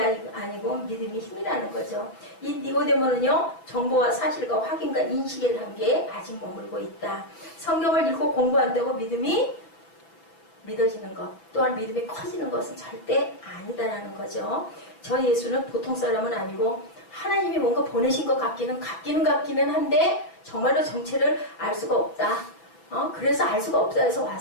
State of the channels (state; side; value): late; right; 5.9 ms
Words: 아니고 믿음이 힘이라는 거죠. 이 니고데모는요. 정보와 사실과 확인과 인식의 단계에 아직 머물고 있다. 성경을 읽고 공부한다고 믿음이 믿어지는 것 또한 믿음이 커지는 것은 절대 아니다라는 거죠. 저 예수는 보통 사람은 아니고 하나님이 뭔가 보내신 것 같기는 한데 정말로 정체를 알 수가 없다. 그래서 알 수가 없다 해서